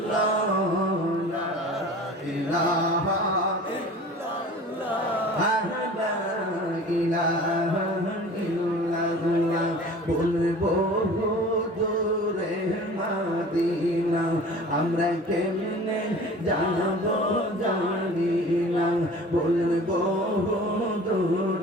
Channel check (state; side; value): normal; both; correlation 0.42